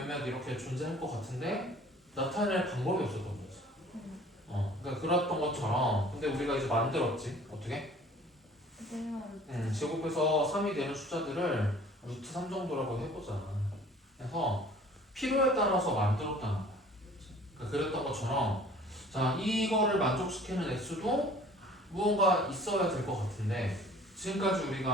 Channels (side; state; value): both; normal; correlation 0.50